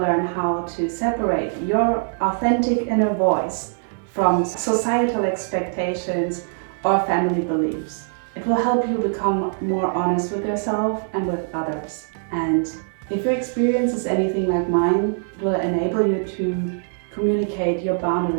how to separate your authentic inner voice from societal expectations or family beliefs. It will help you become more honest with yourself and with others. And if your experience is anything like mine, it will enable you to communicate your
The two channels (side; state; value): left; silent; 64 dB below the other